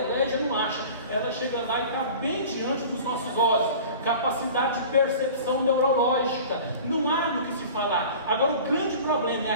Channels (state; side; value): inverted; both; correlation -0.40